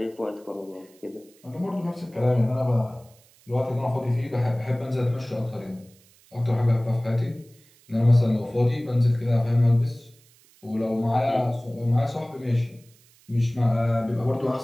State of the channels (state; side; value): noise; right; hiss, 29 dB below the sound